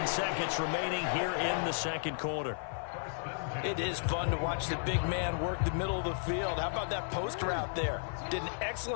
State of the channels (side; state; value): right; silent; 55 dB below the other